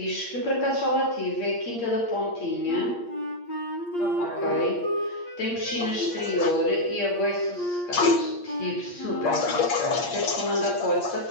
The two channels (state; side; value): late; right; 8.6 ms